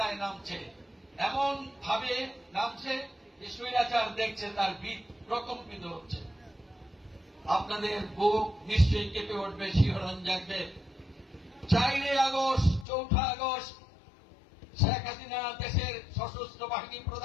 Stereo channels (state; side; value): drops out; right; at 12.9 s